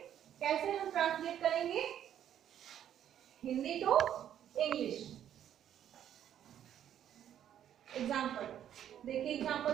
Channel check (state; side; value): quieter; left; 10.3 dB